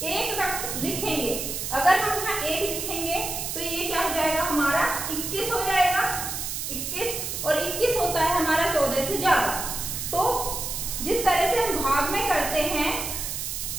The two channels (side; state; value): right; noise; hiss, 4 dB below the sound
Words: एक लिखेंगे, अगर हम यहाँ एक लिखेंगे तो ये क्या हो जाएगा हमारा 21 हो जाएगा, 21, और 21 होता है हमारा 14 से ज्यादा। तो जिस तरह से हम भाग में करते हैं